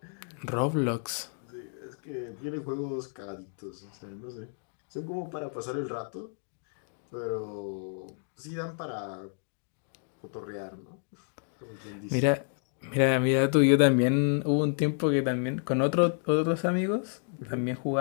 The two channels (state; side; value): silent; right; 57 dB below the other